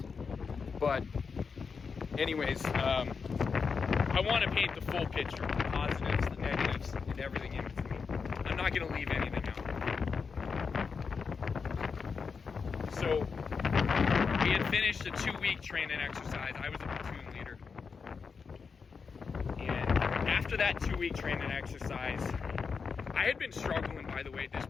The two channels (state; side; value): quieter; right; 5.4 dB